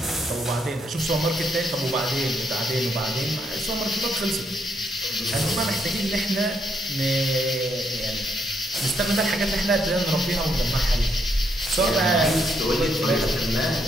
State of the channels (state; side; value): normal; both; correlation 0.75